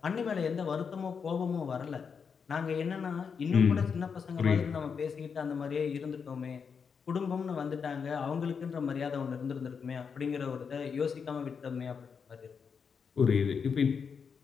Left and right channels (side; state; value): right; quieter; 6.2 dB